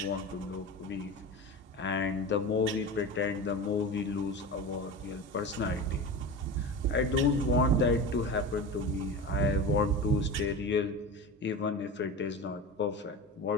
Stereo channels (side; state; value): both; normal; correlation 0.28